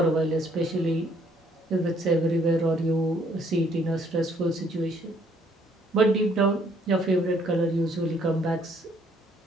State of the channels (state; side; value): normal; both; correlation 0.65